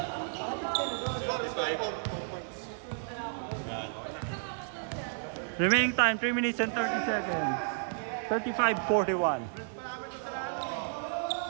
Remaining time 3 minutes and 30 seconds. 35-41.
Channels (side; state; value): left; silent; 56 dB below the other